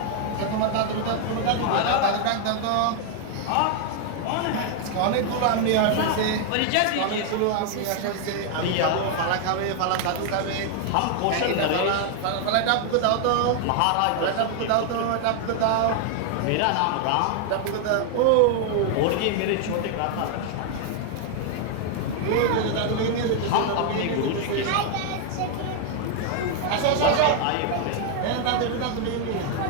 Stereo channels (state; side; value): different; both; correlation 0.00